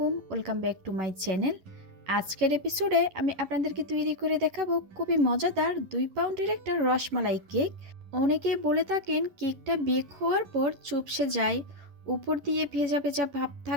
welcome back to my channel. আজকের এপিসোডে আমি আপনাদেরকে তৈরি করে দেখাবো খুবই মজাদার 2 পাউন্ডের একটা রসমালাই কেক। অনেকে বলে থাকেন কেকটা বেক হওয়ার পর চুপসে যায়, উপর দিয়ে ভেজা ভেজা ভাব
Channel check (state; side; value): late; left; 11 ms